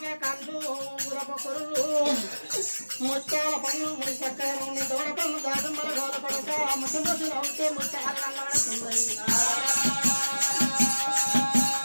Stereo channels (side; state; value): both; inverted; correlation -1.00